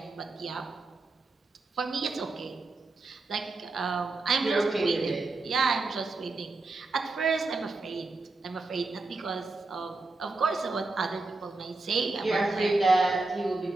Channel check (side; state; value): left; quieter; 3.4 dB